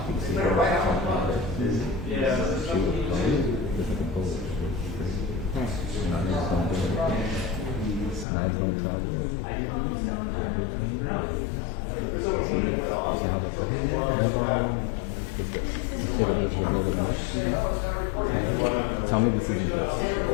Tell me this isn't this.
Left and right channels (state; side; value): drops out; right; at 8.2 s